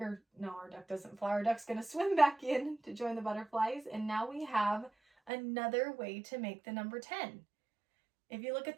no, our duck doesn't fly. Our duck's going to swim back in to join the butterflies. And now we have another way to make the number 10. If you look at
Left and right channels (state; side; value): drops out; left; at 5.3 s